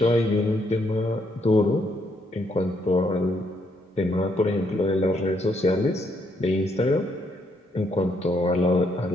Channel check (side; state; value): both; normal; correlation 0.73